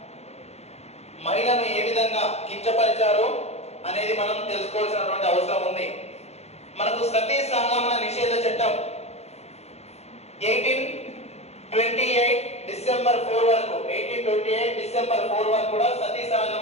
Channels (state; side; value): late; right; 0.31 ms